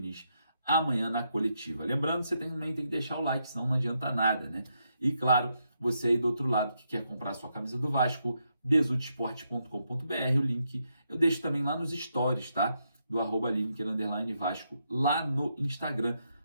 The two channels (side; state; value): both; inverted; correlation -0.80